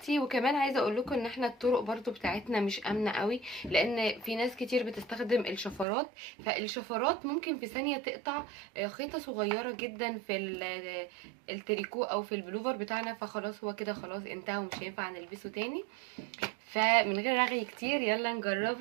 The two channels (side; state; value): left; drops out; at 5.9 s